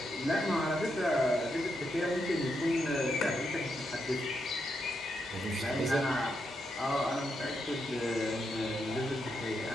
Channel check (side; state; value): both; normal; correlation 0.82